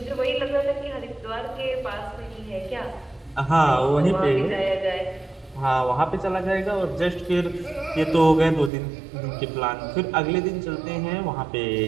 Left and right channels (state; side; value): drops out; left; at 8.7 s